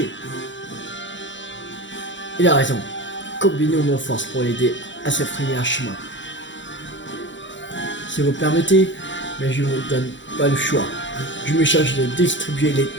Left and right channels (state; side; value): late; right; 0.54 ms